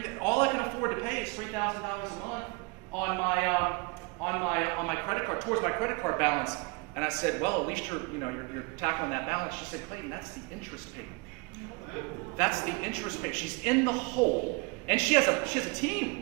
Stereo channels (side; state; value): left; quieter; 28.3 dB